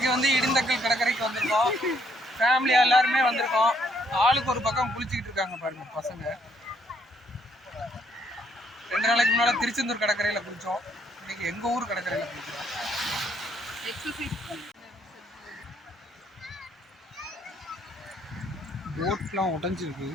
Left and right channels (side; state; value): both; normal; correlation 0.69